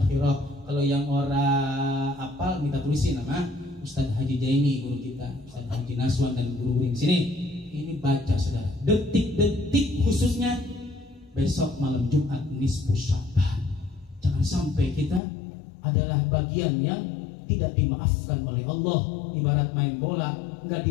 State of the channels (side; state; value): right; drops out; at 15.2 s